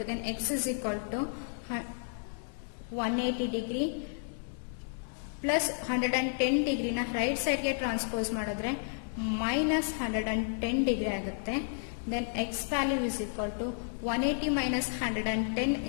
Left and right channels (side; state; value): right; silent; digital silence